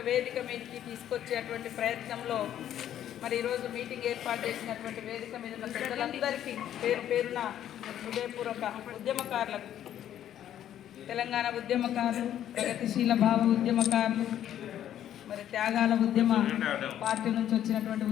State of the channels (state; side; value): quieter; right; 11.0 dB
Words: వేదిక మీదకి తీసుకొచ్చేటువంటి ప్రయత్నంలో మరి ఈరోజు మీటింగ్ ఏర్పాటు చేసినటువంటి వేదిక మీద ఉన్న పెద్దలందరికీ పేరు పేరున హృదయపూర్వక ఉద్యమకారులకు, తెలంగాణ ఉద్యమకారులు, ప్రగతిశీల భావ ఉద్యమకారులు, మరి త్యాగాల ఉద్యమ పార్టీ నుంచి వచ్చినటువంటి